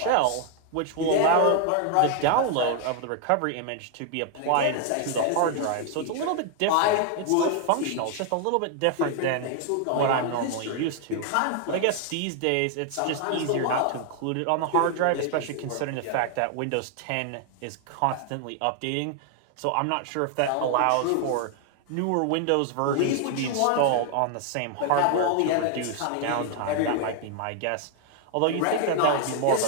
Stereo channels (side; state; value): both; different; correlation 0.00